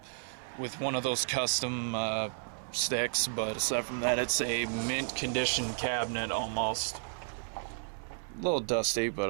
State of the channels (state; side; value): silent; left; 56 dB below the other